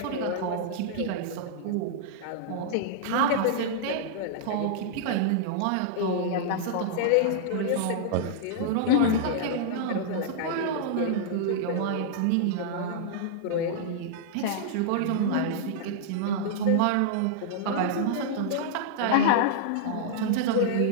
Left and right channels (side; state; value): both; different; correlation -0.02